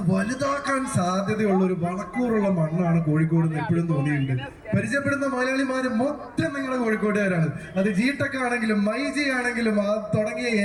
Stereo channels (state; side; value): identical; both; correlation 1.00